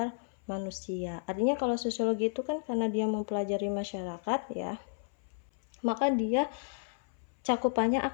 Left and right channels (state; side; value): silent; right; 56 dB below the other